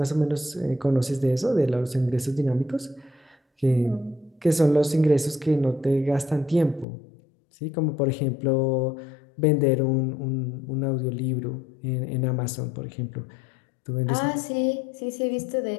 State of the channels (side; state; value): right; drops out; at 6.9 s